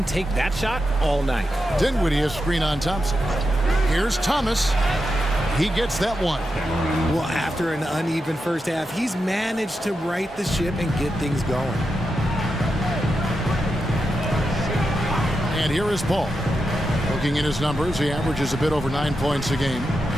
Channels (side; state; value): both; normal; correlation 0.88